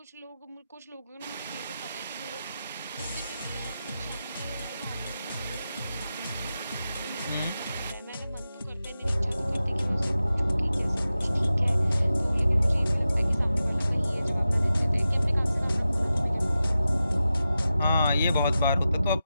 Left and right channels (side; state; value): both; inverted; correlation -0.92